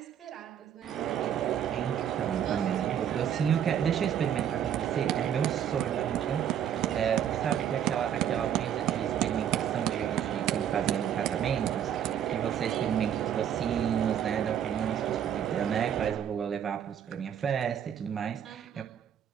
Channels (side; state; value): left; quieter; 9.4 dB